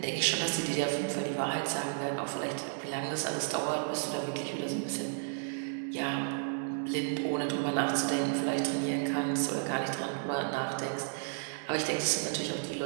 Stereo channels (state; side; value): silent; left; digital silence